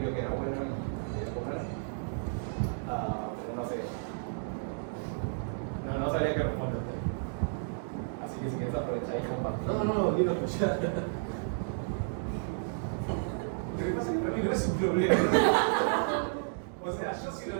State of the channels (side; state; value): left; silent; digital silence